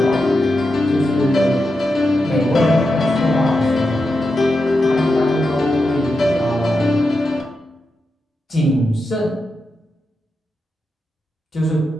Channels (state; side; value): normal; both; correlation 0.88